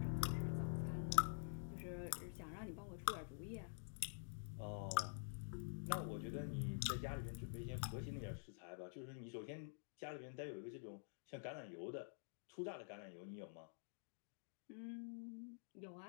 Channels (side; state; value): right; silent; digital silence